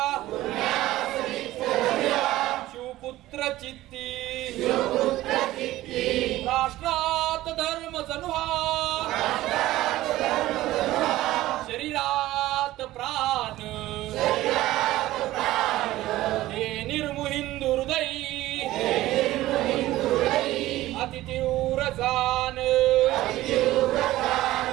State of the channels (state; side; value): quieter; left; 16.0 dB